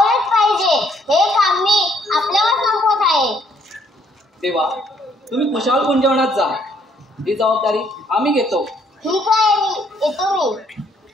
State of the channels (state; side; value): normal; both; correlation 0.66